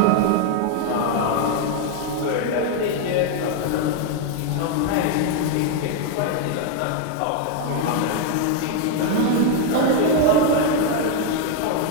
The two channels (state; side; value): different; both; correlation 0.01